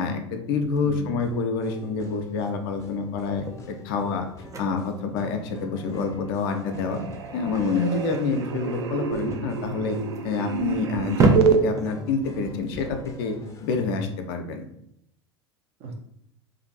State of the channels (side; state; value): both; normal; correlation 0.16